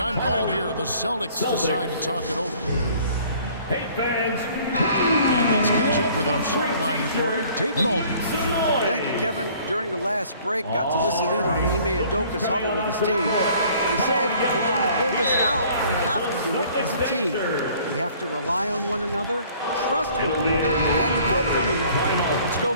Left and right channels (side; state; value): both; inverted; correlation -0.55